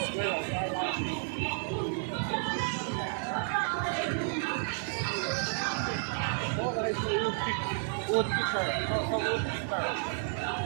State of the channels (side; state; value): left; silent; 56 dB below the other